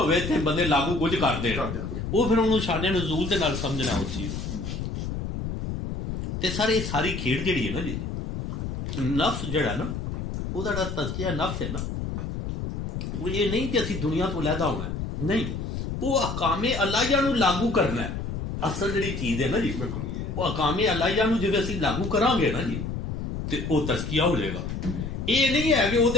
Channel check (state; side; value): noise; left; rumble, 4 dB below the sound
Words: تھے بندے لاگو کچھ کرتے ہیں، وہ پھر انہوں شان نزول دے نال سمجھنا اس چیز تے سارے ساری کھیڑ جڑی ہے نا جی، نفس جڑا نا وہ دا تزکیہ نفس ہے نا، وہ یہ نہیں کہ اسی دنیا تو علیحدہ ہونا ہے، نہیں، وہ احکام الہیہ نو لاگو کرنا ہے۔ اصل جڑی چیز ہے نا جی وہ احکام الہیہ نو جے اسی لاگو کران گے نا جی تے وہ تزکیہ ہو جائے گا۔ یہ نہیں ہے کہ وہ